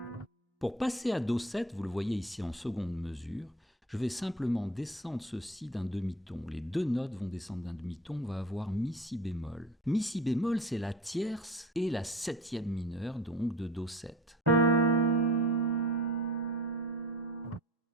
Pour passer à do 7, vous le voyez ici en seconde mesure, je vais simplement descendre ceci d'un demi-ton. Les deux notes vont descendre d'un demi-ton, on va avoir mi si bémol. Mi si bémol, c'est la tierce et la septième mineure, donc de do 7.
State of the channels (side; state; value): both; normal; correlation 0.40